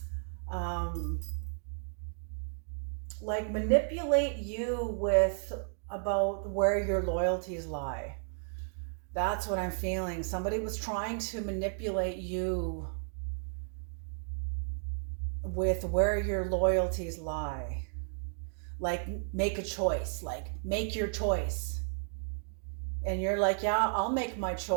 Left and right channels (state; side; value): silent; left; digital silence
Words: like manipulate you about where your loyalties lie. That's what I'm feeling. Somebody was trying to manipulate you with where your loyalties lie. Like make a choice, like make your choice. And you're like, yeah, I'll make my